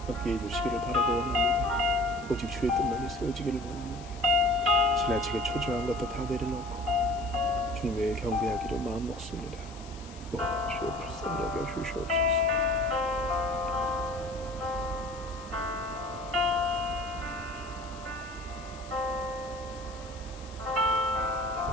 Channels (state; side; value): noise; left; hiss, 20 dB below the sound